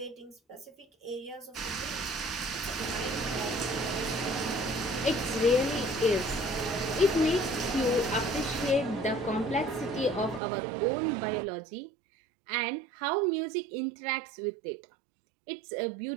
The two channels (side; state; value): left; drops out; at 10.4 s